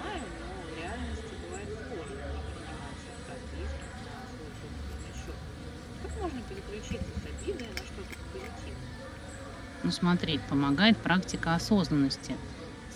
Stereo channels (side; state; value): both; identical; correlation 1.00